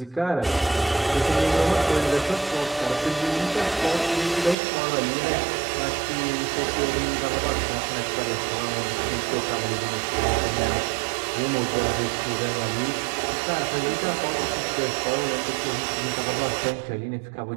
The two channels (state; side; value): drops out; left; at 4.5 s